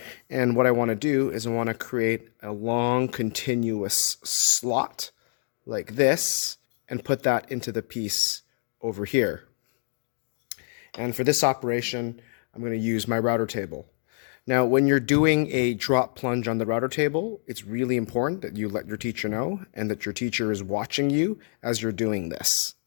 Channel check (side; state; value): right; silent; 61 dB below the other